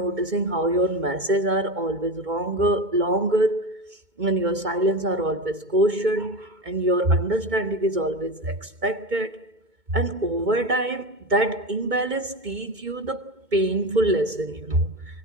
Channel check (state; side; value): late; left; 2.2 ms